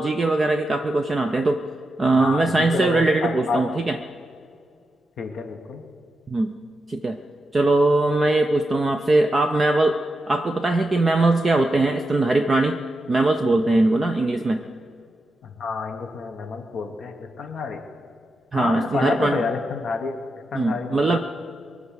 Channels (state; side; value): normal; both; correlation 0.88